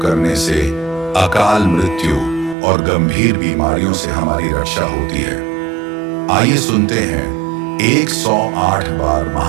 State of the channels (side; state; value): left; drops out; at 2.6 s